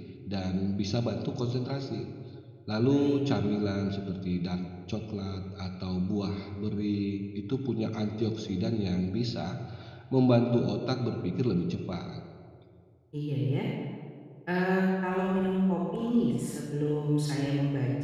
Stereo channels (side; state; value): both; identical; correlation 1.00